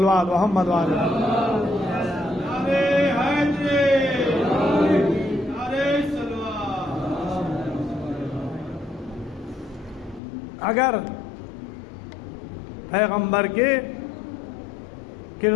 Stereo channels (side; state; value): right; drops out; at 10.2 s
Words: محمد وعلیہ اگر پیغمبر کے